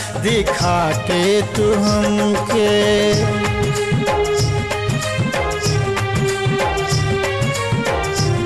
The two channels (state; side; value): identical; both; correlation 1.00